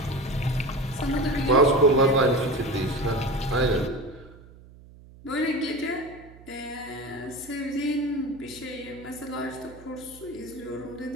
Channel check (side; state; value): right; noise; hum, 21 dB below the sound